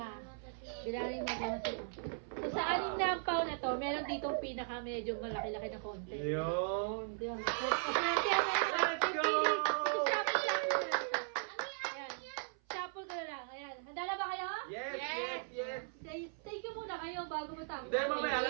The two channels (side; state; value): left; silent; 52 dB below the other